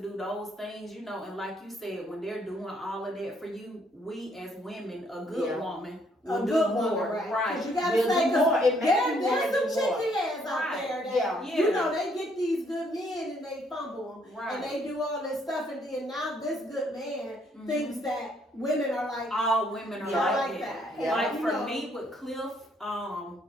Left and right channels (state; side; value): normal; both; correlation 0.68